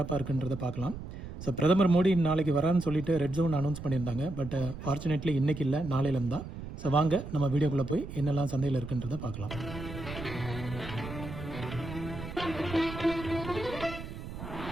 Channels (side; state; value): right; noise; rumble, 10 dB below the sound